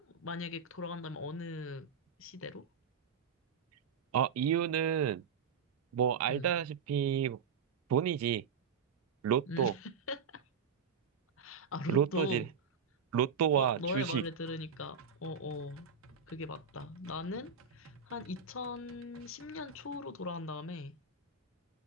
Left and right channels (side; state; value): left; quieter; 6.1 dB